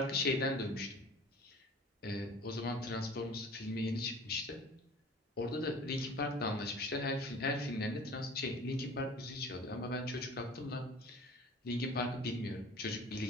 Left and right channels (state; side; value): normal; both; correlation 0.44